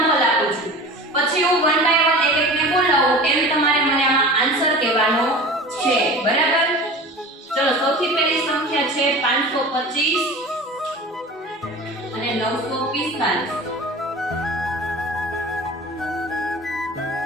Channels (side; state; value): both; normal; correlation 0.37